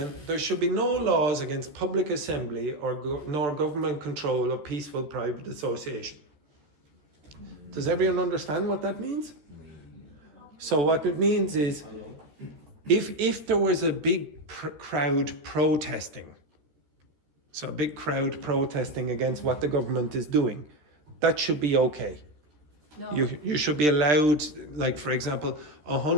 There should be no laws against public assembly nor government control of peaceful private association. Does everyone understand what that means? So what it means is if there was a big crowd protesting, so a big crowd protesting against what the government is doing, that should be okay. No. You should be allowed, like for example,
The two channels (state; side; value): late; left; 14 ms